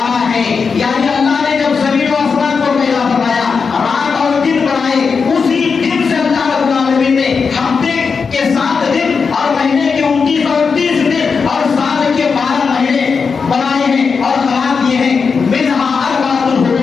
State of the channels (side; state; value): right; quieter; 5.4 dB